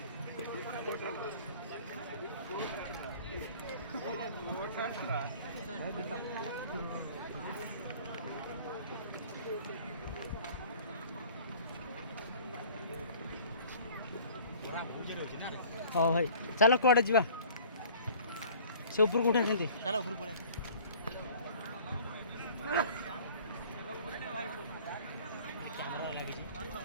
हाँ भाई चलो कड़े जा से ऊपर को उठा चलो ऊपर पड़े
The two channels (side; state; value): both; inverted; correlation -0.48